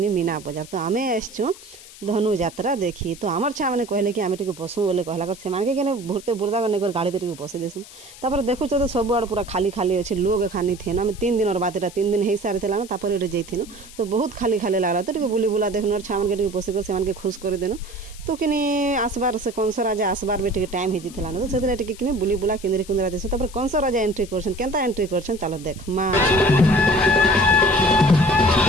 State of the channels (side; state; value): left; noise; hiss, 19 dB below the sound